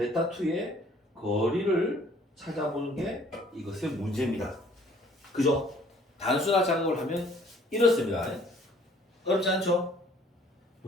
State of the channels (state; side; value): normal; both; correlation 0.57